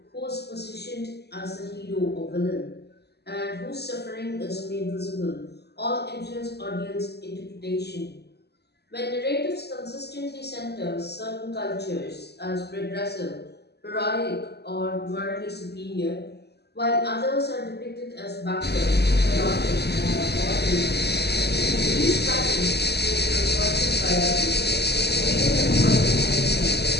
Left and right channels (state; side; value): late; right; 0.48 ms